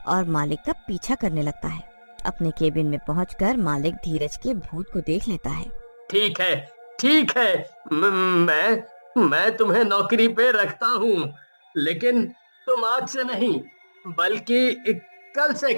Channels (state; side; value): inverted; both; correlation -1.00